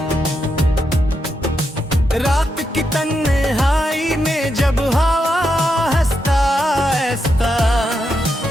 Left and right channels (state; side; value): normal; both; correlation 0.83